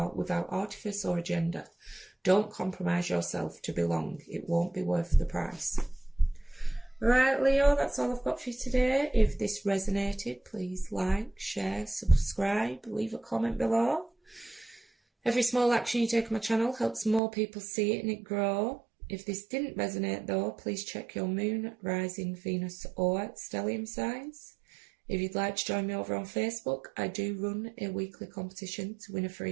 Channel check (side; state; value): left; drops out; at 17.2 s